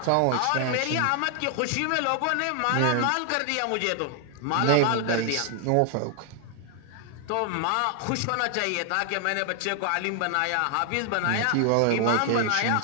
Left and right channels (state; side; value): different; both; correlation 0.00